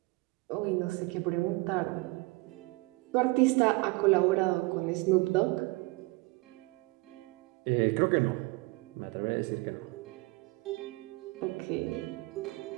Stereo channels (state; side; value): quieter; left; 25.1 dB